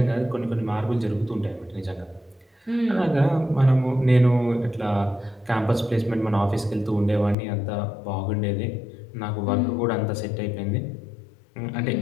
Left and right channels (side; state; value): right; drops out; at 7.4 s